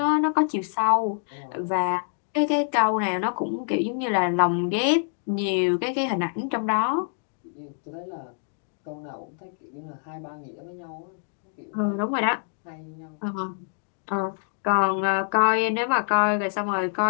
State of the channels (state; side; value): silent; right; digital silence